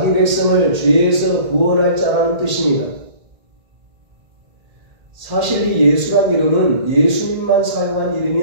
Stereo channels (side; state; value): left; late; 1.8 ms